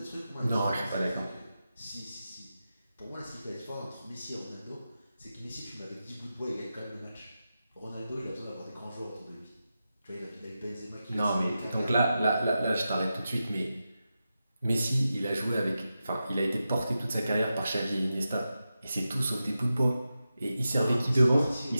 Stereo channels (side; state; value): both; inverted; correlation -0.91